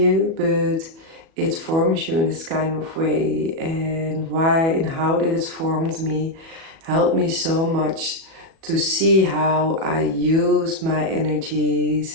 but it forms you in this kind of way. And why and how did it formed me helped me so much to see how I use my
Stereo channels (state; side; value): late; left; 37 ms